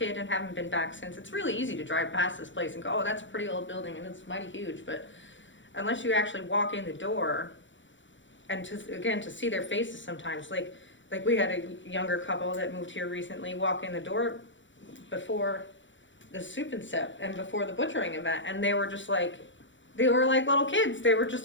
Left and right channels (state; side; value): late; right; 0.55 ms